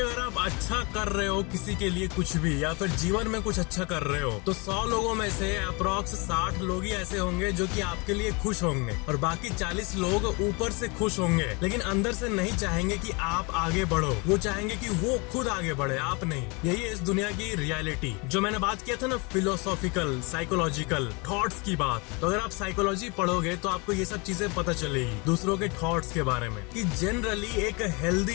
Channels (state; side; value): quieter; right; 29.2 dB